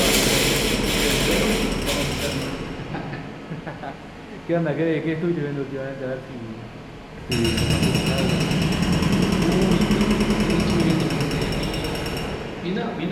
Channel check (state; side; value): identical; both; correlation 1.00